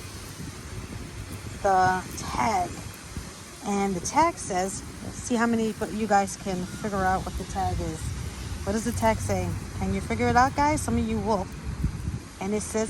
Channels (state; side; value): identical; both; correlation 1.00